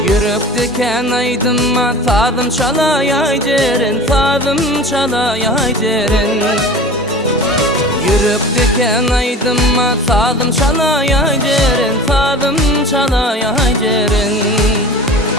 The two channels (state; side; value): normal; both; correlation 0.36